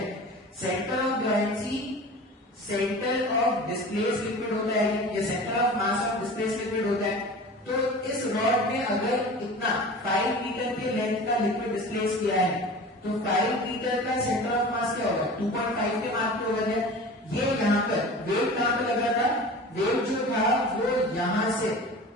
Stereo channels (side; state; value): both; normal; correlation 0.37